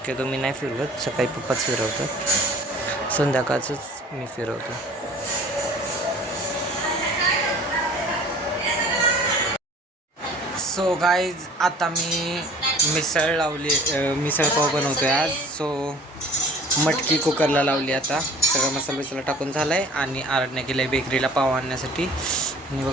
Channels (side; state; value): both; normal; correlation 0.48